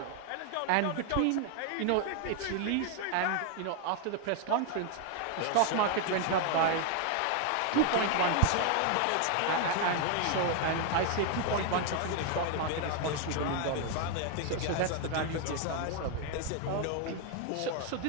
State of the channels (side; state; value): both; different; correlation 0.01